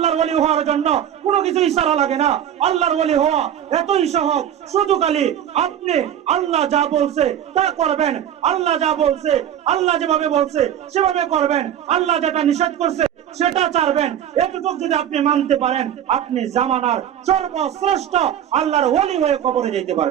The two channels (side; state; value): left; quieter; 10.2 dB